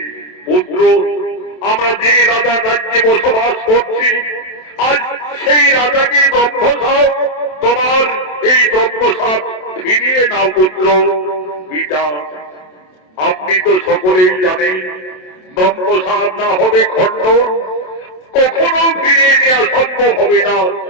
পুত্র, আমরা যে রাজার রাজ্যে বসবাস করছি, আজ সেই রাজাকে ব্রহ্মসাপ, তোমার এই ব্রহ্মসাপ ফিরিয়ে নাও পুত্র। পিতা, আপনি তো সকলেই জানেন ব্রহ্মসাপ না হবে খণ্ড, কখনো ফিরিয়ে নেওয়া সম্ভব হবে না।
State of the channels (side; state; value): right; late; 27 ms